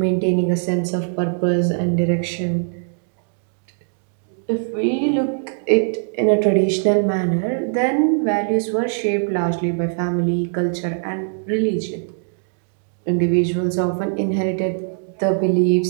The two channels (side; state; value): left; silent; digital silence